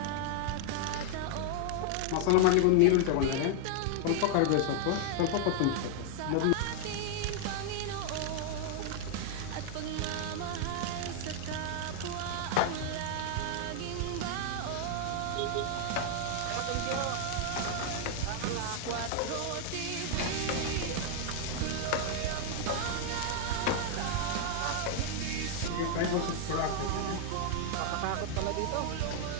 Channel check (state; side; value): different; both; correlation 0.00